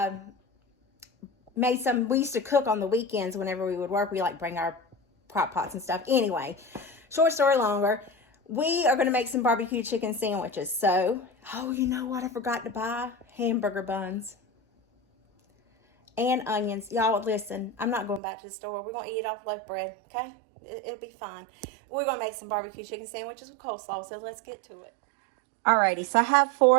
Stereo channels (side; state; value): left; drops out; at 18.2 s